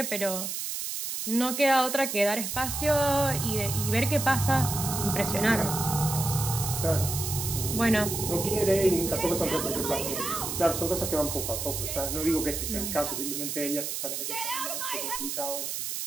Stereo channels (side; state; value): right; noise; hiss, 4 dB below the sound